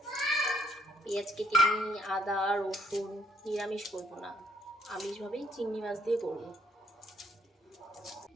পেঁয়াজ কেটে নিই, আদা রসুন। নিরামিষ করবো না, আমিষভাবেই চিংড়ি মাছ দিয়ে করবো।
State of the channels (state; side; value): normal; both; correlation 0.68